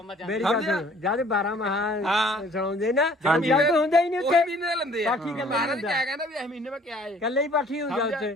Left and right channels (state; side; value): normal; both; correlation 0.55